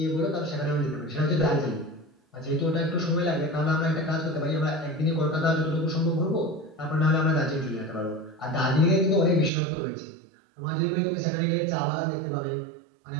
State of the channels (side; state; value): left; drops out; at 9.5 s